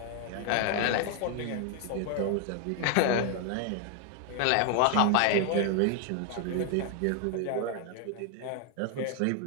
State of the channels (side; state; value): both; different; correlation 0.00